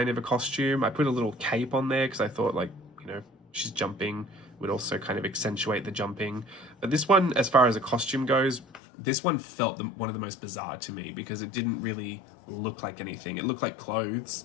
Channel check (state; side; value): drops out; right; at 8.8 s